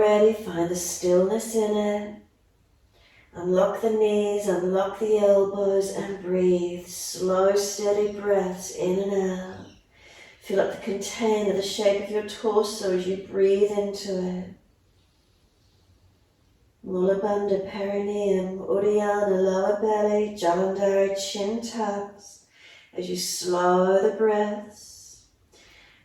find the stillness in it. Unlock the knees, unlock the elbows, and breathe. Slow, steady breaths in and out. Fill up the container, the shape of your torso as you breathe into it. Mula Bandha, perineum, Uddiyana, lower belly, Jalandhara, chin tucks. As you slow the breaths,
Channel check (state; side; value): identical; both; correlation 1.00